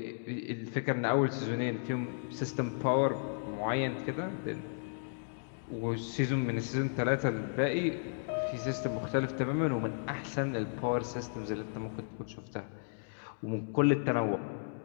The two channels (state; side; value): silent; right; digital silence